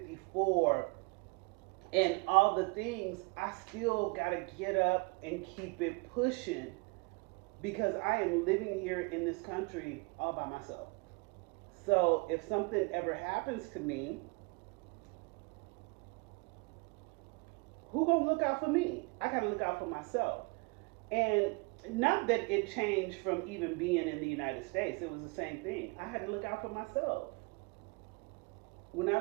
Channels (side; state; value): left; quieter; 30.0 dB